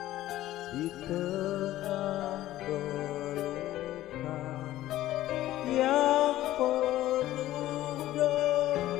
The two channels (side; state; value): right; quieter; 14.7 dB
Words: di tengah belukar yang penuh